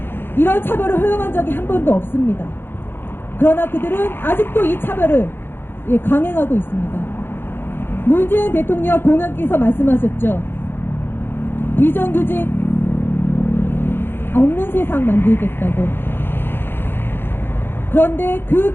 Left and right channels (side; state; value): right; late; 0.10 ms